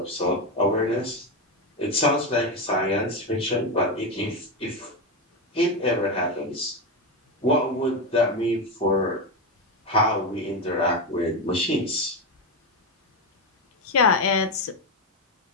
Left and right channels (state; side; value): normal; both; correlation 0.12